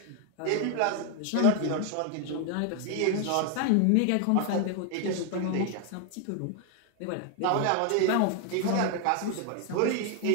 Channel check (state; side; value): different; both; correlation 0.01